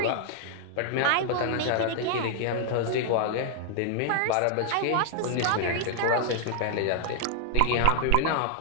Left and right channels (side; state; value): both; different; correlation 0.00